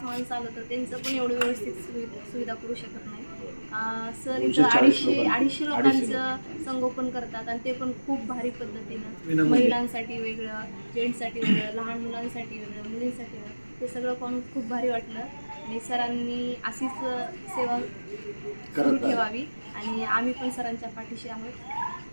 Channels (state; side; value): inverted; both; correlation -1.00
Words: माणसं आलं तर त्यांचं पण एवढं व्यवस्थित सुविधा करू शकत नाही. सर इथं 250 लोकांचं संगोपन करतात आणि ते पण खूप भारी पद्धतीनं. महिलांसाठी वेगळं, जेंट्ससाठी वेगळं, लहान मुलांसाठी वेगळं, मुलींसाठी वेगळं. ते सगळं पाहून खूप भारी वाटलं आणि सरांनी अशीच सेवा सुरू ठेवावी आणि आम्ही पण सरांच्या पाठीशी आहोत.